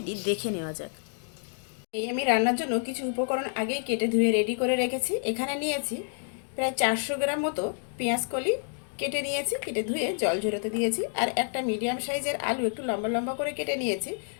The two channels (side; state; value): right; silent; 57 dB below the other